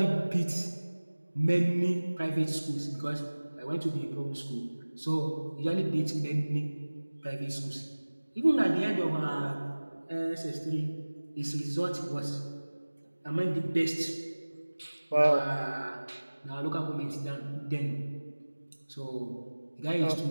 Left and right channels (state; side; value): inverted; both; correlation -1.00